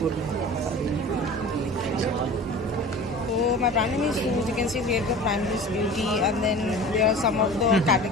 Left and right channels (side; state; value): both; normal; correlation 0.38